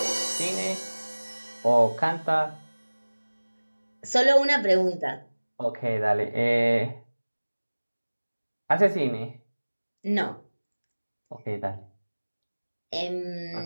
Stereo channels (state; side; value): inverted; both; correlation -1.00